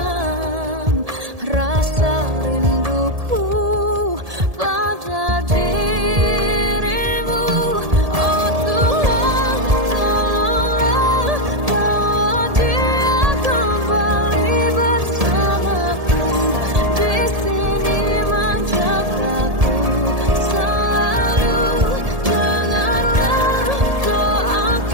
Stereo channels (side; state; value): left; late; 1.7 ms